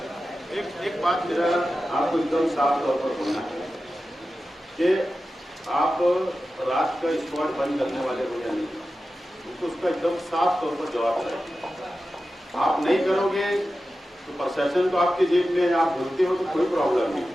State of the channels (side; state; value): both; normal; correlation 0.93